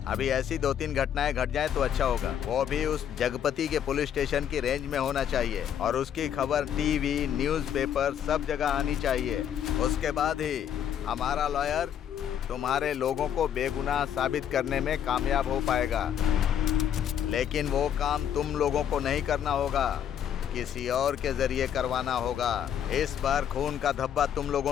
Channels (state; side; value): quieter; right; 9.3 dB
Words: अभी ऐसी 2-3 घटनाएं घट जाएं तो अच्छा होगा। वो भी उस जगपति के पुलिस स्टेशन की रेंज में होना चाहिए और उसकी खबर टीवी, न्यूज़पेपर सब जगह आनी चाहिए। उसके बाद ही हमारा लॉयर तुम्हारे लोगों को बेगुनाह साबित करने में कामयाब हो पाएगा। लेकिन वो काम तुम लोगों को नहीं करना होगा, किसी और के जरिए करवाना होगा। इस बार खून का धब्बा तुम लोगों